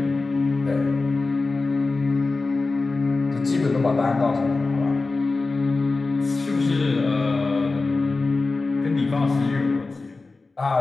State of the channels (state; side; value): quieter; right; 3.6 dB